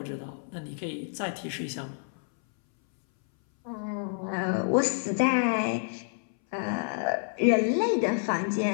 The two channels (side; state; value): right; silent; 59 dB below the other